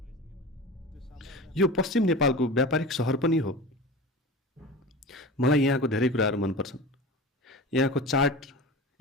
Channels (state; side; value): normal; both; correlation 0.32